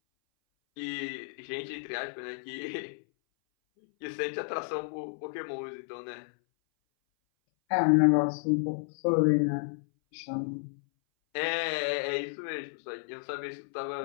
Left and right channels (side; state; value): right; silent; 57 dB below the other